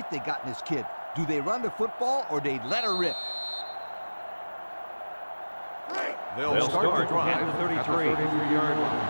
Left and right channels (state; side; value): inverted; both; correlation -1.00